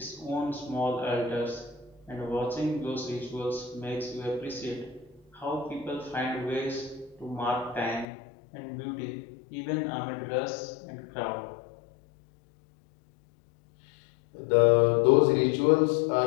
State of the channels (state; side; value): drops out; right; at 8.1 s